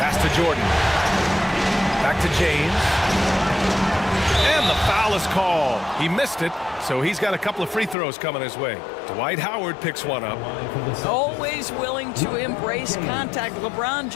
to Jordan. Back to James. And the foul is called. He missed it, so he's got a couple of free throws coming his way. Dwight Howard picks one up. Always willing to embrace contact. LeBron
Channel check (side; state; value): right; drops out; at 8.0 s